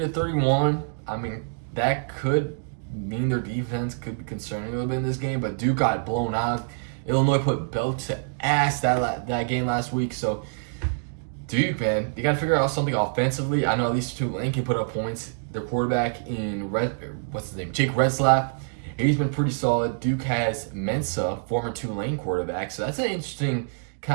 I mean, that could mean their defense could be concerning a little bit in this game. But Duke got blown out. Illinois put belt to ass that game last week. So Duke, man, you got to figure out something offensively. I know at least Tulane can put up points. Their quarterback in Jake Retzlaff, he's been pretty solid. Duke has Mensa, former Tulane quarterback. So that's an interesting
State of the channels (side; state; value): left; silent; digital silence